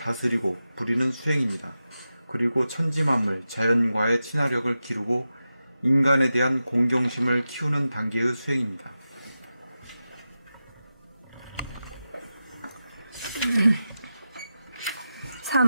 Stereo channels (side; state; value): both; inverted; correlation -0.92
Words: 부리는 수행입니다. 그리고 천지만물, 자연과의 친화력을 기르고 인간에 대한 공경심을 키우는 단계의 수행입니다.